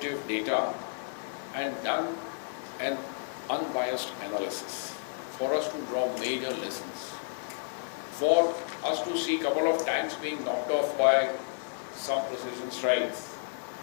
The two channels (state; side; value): silent; right; digital silence